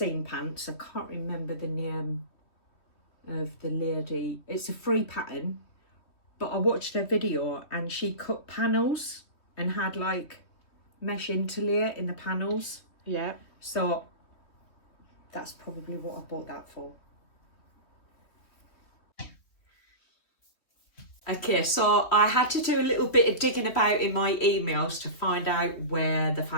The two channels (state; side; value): late; right; 3.3 ms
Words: pants, I can't remember the name of the lady. It's a free pattern, but I watched her video and she cut panels and had like mesh interlayer in the panels. yeah. So that's probably what I bought that for. Okay, so I had to do a little bit of digging about in my emails to find out where the